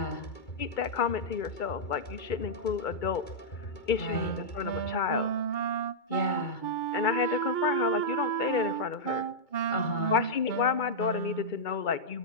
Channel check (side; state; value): right; late; 2.3 ms